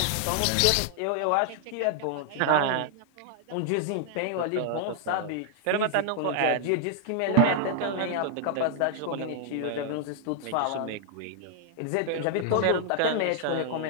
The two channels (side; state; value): both; different; correlation 0.00